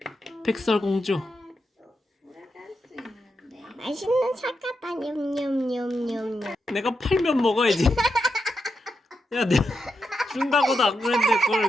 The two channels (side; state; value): both; normal; correlation 0.85